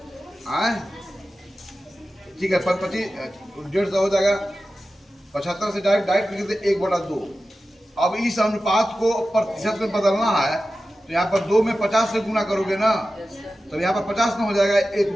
हाँ ठीक है, 25 150 हो जाएगा। 75 से डायरेक्ट लिख देते 1/2। अब इस अनुपात को प्रतिशत में बदलना है तो यहाँ पर 2 में 50 से गुना करोगे ना, तो यहाँ पर 50 ना हो जाएगा, 1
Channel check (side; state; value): both; normal; correlation 0.94